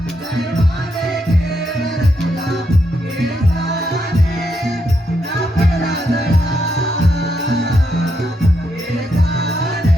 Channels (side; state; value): both; normal; correlation 0.80